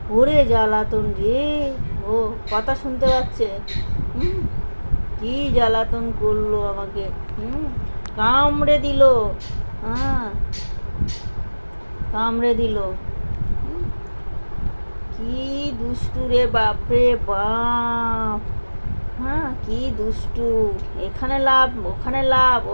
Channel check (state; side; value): inverted; both; correlation -1.00